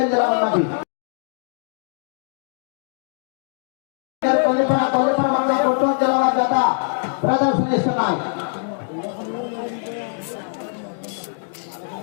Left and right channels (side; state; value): right; silent; digital silence